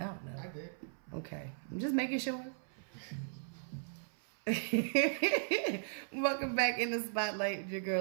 don't know. I did. Okay, I'm just making sure. Welcome back in the spotlight with your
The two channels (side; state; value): left; silent; 53 dB below the other